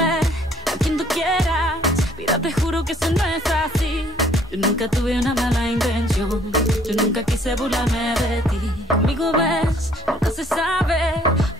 a quien tú quieras, mira te juro que eso no es así. Yo nunca tuve una mala intención, yo nunca quise burlarme de ti. Conmigo ves, nunca se sabe,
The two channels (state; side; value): normal; both; correlation 0.60